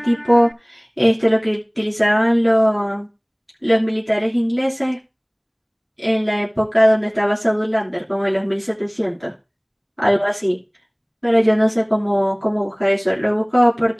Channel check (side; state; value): both; identical; correlation 1.00